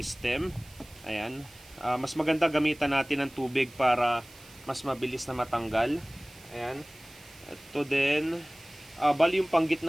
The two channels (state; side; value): noise; right; hiss, 22 dB below the sound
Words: Ayan. Mas maganda gamitan natin ng tubig para mas mabilis na matanggal. Ayan. Ito din, bali yung